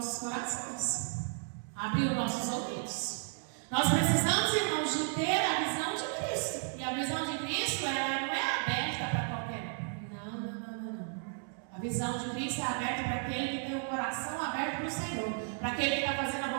corações, abrir os nossos ouvidos. Nós precisamos, irmãos, de ter a visão de Cristo. E a visão de Cristo ela não é aberta para qualquer um. Não. A visão de Cristo é aberta para aquele que tem o coração aberto para o Senhor, para aquele que está fazendo a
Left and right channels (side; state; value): left; silent; 55 dB below the other